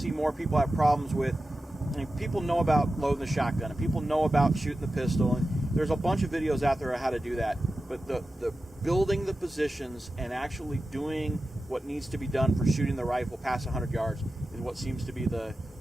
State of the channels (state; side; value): normal; both; correlation 0.93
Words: more people have problems with. I mean, people know about loading the shotgun, and people know about shooting the pistol, and there's a bunch of videos out there on how to do that. But the building the positions and actually doing what needs to be done for shooting the rifle past 100 yards is what seems to be the